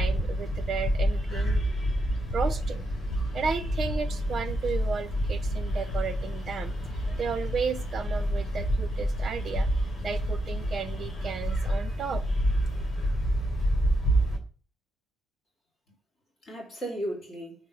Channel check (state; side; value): normal; both; correlation 0.82